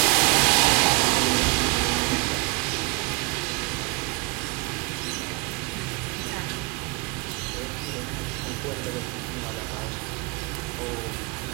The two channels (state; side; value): quieter; left; 28.0 dB